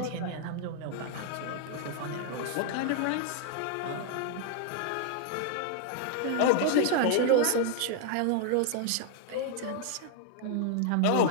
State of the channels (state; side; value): different; both; correlation 0.00